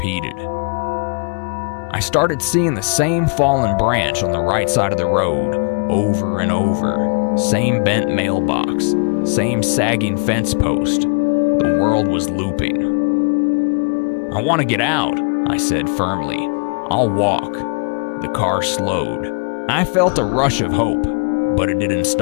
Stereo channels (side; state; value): right; quieter; 39.5 dB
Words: I started seeing the same fallen branch on the right side of the road, over and over. Same bent mailbox, same sagging fence post. The world was looping. I want to get out, I said firmly. I'll walk. The car slowed. I felt a rush of hope, but it didn't